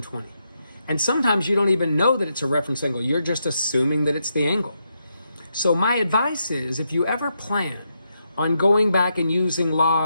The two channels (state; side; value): inverted; both; correlation -0.82